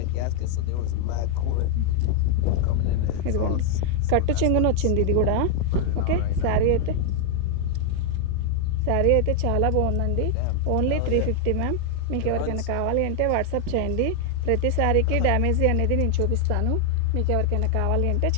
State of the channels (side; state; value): both; different; correlation 0.00